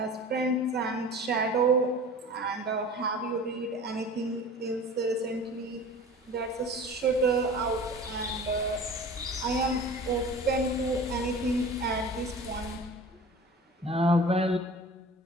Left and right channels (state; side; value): normal; both; correlation 0.39